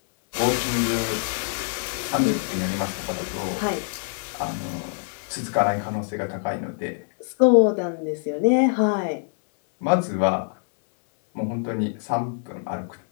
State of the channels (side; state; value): right; silent; 62 dB below the other